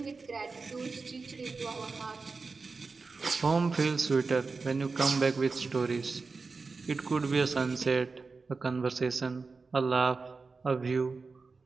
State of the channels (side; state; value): left; quieter; 4.3 dB